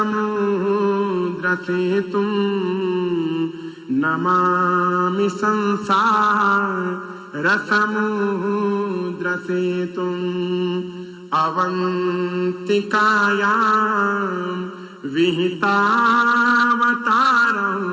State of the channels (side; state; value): both; identical; correlation 1.00